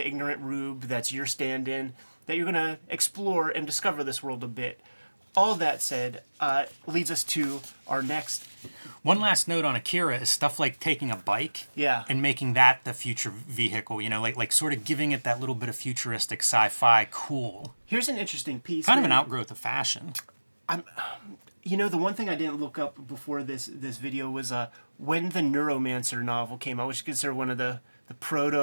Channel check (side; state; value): both; inverted; correlation -1.00